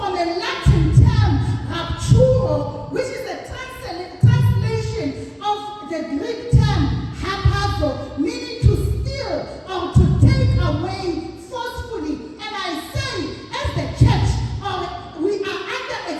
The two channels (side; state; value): both; identical; correlation 1.00